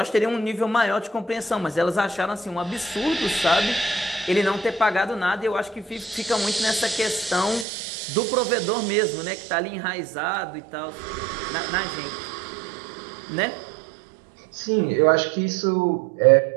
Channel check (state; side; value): drops out; left; at 7.7 s